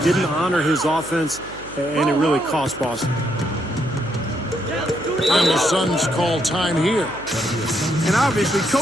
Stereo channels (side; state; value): right; noise; hum, 19 dB below the sound